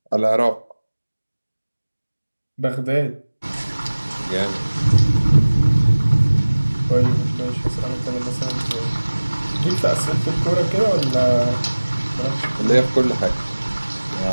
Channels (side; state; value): both; inverted; correlation -1.00